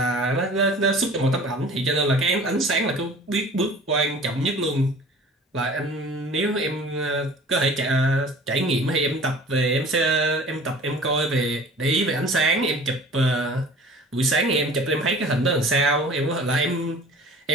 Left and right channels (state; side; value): normal; both; correlation 0.45